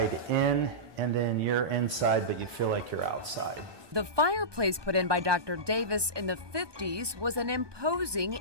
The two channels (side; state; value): left; late; 1.2 ms